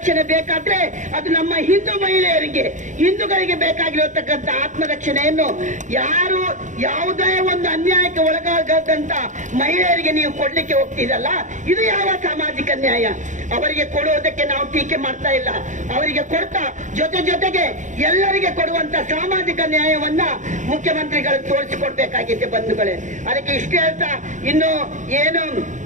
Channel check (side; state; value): left; late; 0.36 ms